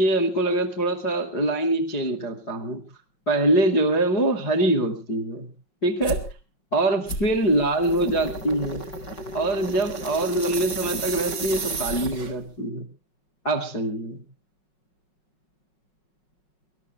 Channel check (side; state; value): right; late; 5.2 ms